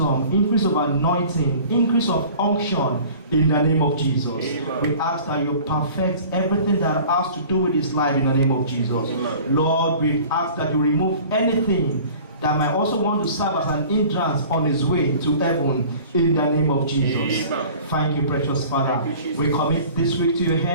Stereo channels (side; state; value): both; inverted; correlation -0.45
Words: increase of anointing, increase of unction in the name of Jesus. Amen. We ask that you perfect everything that has to do with his life in the name of Jesus. Amen. Lord, we ask that you remove anything that might also want to serve as an hindrance on his way to heaven in the name of Jesus. Amen. Thank you, precious Father. We commit this week to your